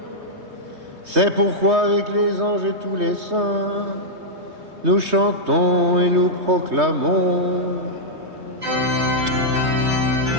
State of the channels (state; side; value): late; left; 3.2 ms